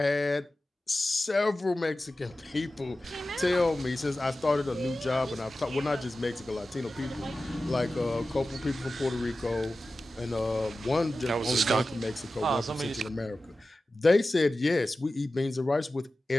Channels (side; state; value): both; normal; correlation 0.94